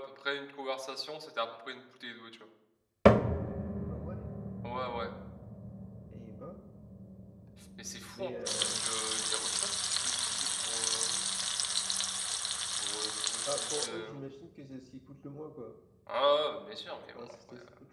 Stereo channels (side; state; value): both; identical; correlation 1.00